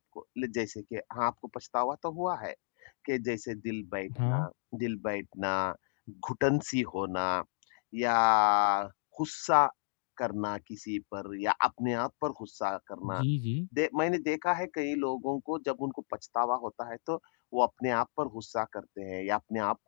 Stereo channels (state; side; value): silent; right; digital silence